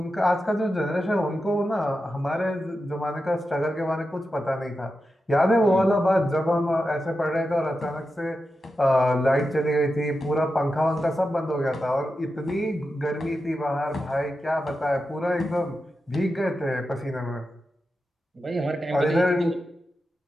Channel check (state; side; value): normal; both; correlation 0.90